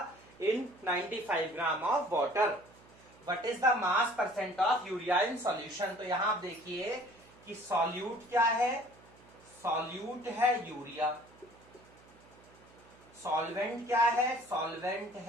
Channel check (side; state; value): right; noise; hum, 26 dB below the sound